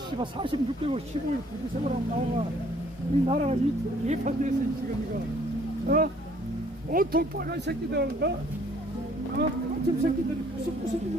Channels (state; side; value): normal; both; correlation 0.60